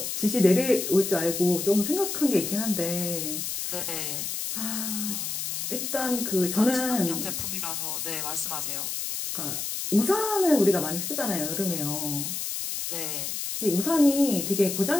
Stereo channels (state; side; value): noise; left; hiss, 3 dB below the sound